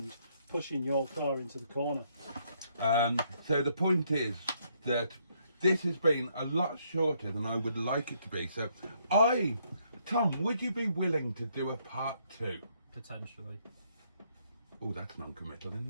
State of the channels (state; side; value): inverted; both; correlation -0.71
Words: pushing your car into the corner. So the point is that this has been a lot shorter than I would like it to be. So Tom, would you be willing to do a part 2? Potentially. Oh, that's non-committal,